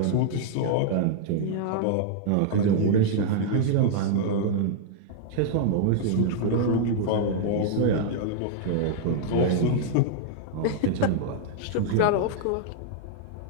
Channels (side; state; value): both; different; correlation -0.01